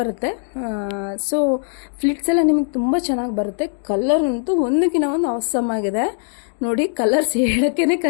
ಸೊ ಫ್ಲಿಟ್ಸ್ ಎಲ್ಲ ನಿಮಗೆ ತುಂಬ ಚೆನ್ನಾಗಿ ಬರುತ್ತೆ. ಕಲರ್ ಅಂತೂ ಒಂದಕ್ಕಿಂತ ಒಂದು ಅವಸಮ್ ಆಗಿದೆ. ನೋಡಿ, ಕಲರ್ಸ್ ಹೇಳೋಕ್ಕೇ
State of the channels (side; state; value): right; silent; 61 dB below the other